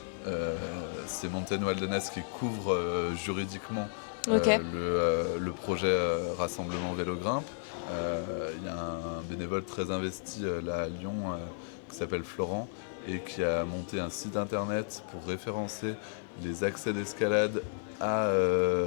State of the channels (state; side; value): silent; right; 56 dB below the other